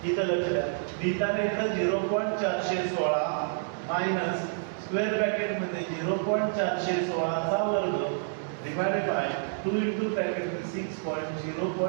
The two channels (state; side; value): silent; left; 59 dB below the other